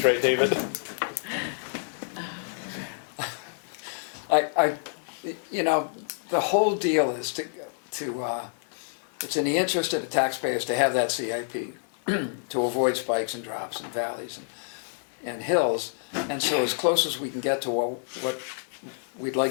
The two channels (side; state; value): right; silent; digital silence